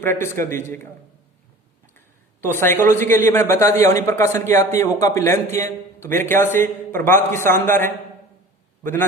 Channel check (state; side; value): normal; both; correlation 0.42